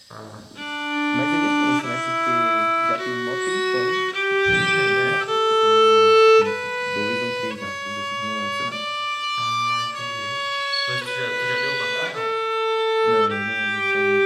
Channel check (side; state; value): both; identical; correlation 1.00